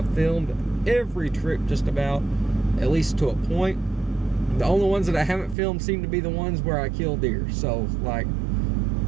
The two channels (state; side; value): drops out; left; at 5.6 s